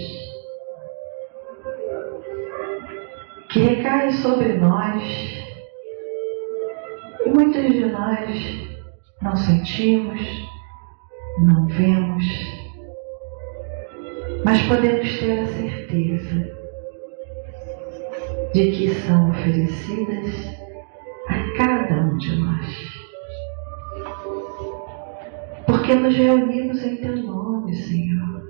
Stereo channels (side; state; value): left; silent; digital silence